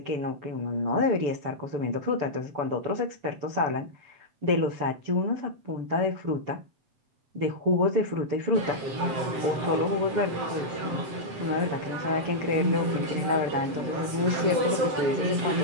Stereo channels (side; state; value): left; late; 7.6 ms